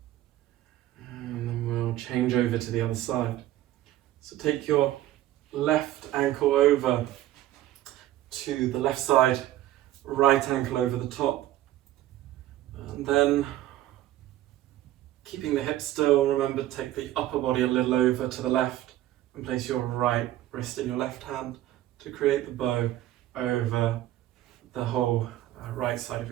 And then we'll change over to the other side. So take your left ankle over to the left side, right ankle over the top. And then keeping the hips still, remember to take the upper body a little over to the left and place your right wrist in your left hand to create the bow over the whole right side of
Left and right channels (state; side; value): quieter; left; 14.2 dB